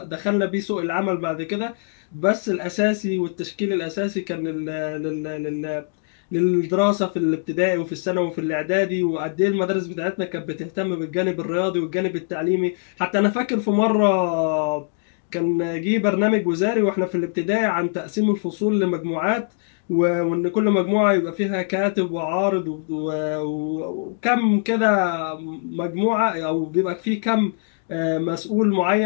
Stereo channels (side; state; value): right; silent; digital silence